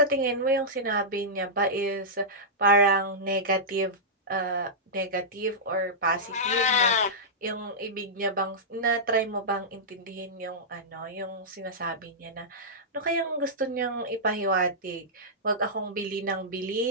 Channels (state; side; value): normal; both; correlation -0.12